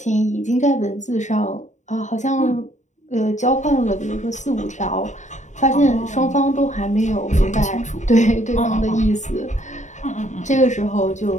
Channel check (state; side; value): late; right; 0.35 ms